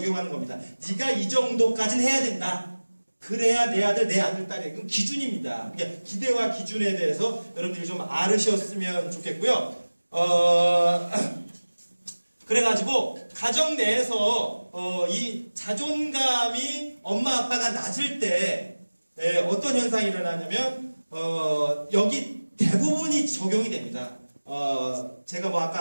겁니다. 네가 이 정도까지는 해야 된다. 그래야 내 아들, 내 아들, 딸이. 그건 기준입니다. 그러니까 기대와 기준에 대해서 여러분들이 좀 알으셨으면 좋겠고요. 그래가지고 가정 내에서 이 자존감이 엄마 아빠가 낮을 때 어떤 현상이 일어나냐면 여기 대부분이 적용이 됩니다. 제가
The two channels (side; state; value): both; inverted; correlation -1.00